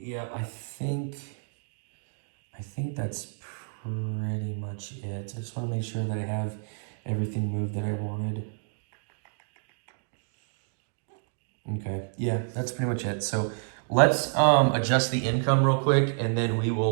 I think that's pretty much it. I just want to make sure that I have everything moved that I wanted. Okay, yeah, that's pretty much it. So let's adjust the income real quick, and then we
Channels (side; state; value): left; silent; digital silence